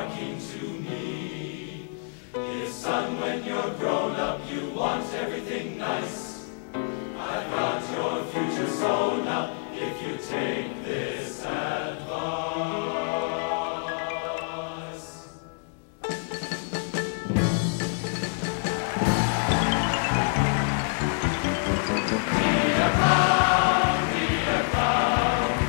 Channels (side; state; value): right; silent; 60 dB below the other